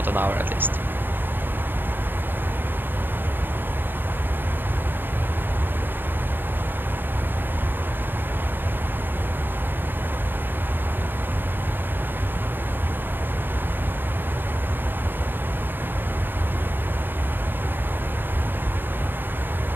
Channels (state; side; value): late; left; 0.097 ms